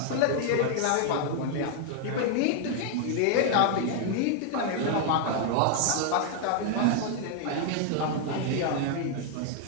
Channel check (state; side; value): different; both; correlation 0.00